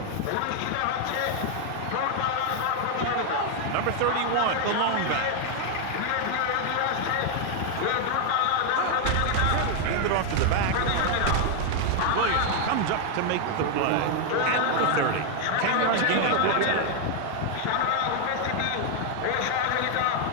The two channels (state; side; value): different; both; correlation 0.00